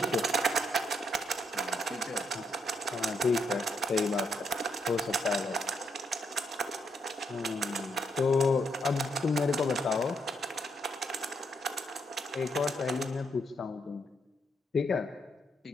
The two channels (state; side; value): normal; both; correlation 0.77